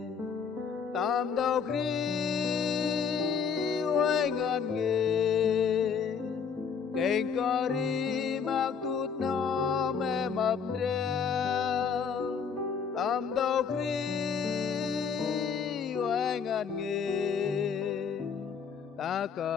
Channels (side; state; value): right; quieter; 6.4 dB